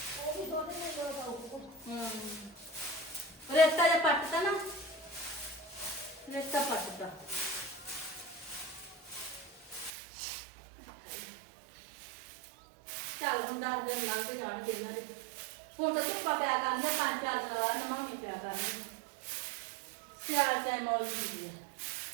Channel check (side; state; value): left; drops out; at 9.9 s